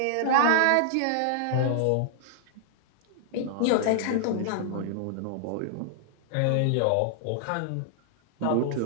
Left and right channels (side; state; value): both; different; correlation -0.01